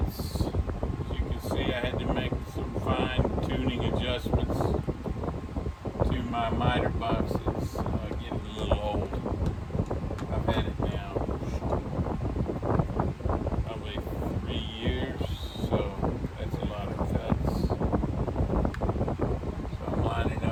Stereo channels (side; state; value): both; identical; correlation 1.00